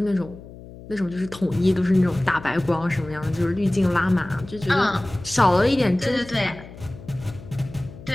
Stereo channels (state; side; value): noise; left; hum, 17 dB below the sound